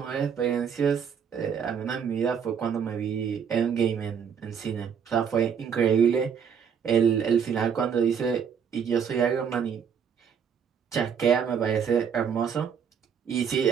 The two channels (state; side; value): quieter; left; 7.3 dB